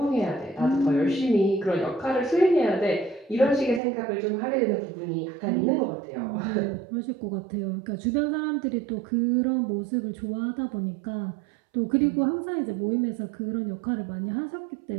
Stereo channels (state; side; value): drops out; left; at 3.8 s